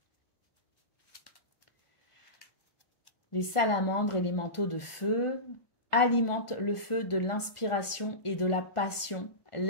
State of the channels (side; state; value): right; late; 1.4 ms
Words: Les salamandres et les manteaux de feu alimentent le feu de l'inspiration et de la passion.